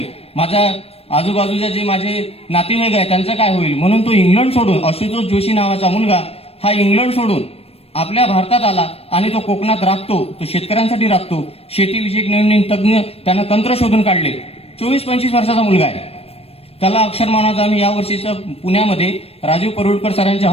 माझ्या आजूबाजूच्या जे माझे नातेवाईक आहे त्यांचं काय होईल. म्हणून तो इंग्लंड सोडून, आशुतोष जोशी नावाचा मुलगा हा इंग्लंड सोडून आपल्या भारतात आला आणि तो कोकणात राबतो, तो शेतकऱ्यांसाठी राबतो. शेतीविषयक नवीन तज्ञ त्यानं तंत्र शोधून काढले. 24-25 वर्षाचा मुलगा आहे. त्याला अक्षर मानवाचा आम्ही यावर्षीचं पुण्यामध्ये राजीव परुळकर सरांच्या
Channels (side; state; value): right; late; 0.28 ms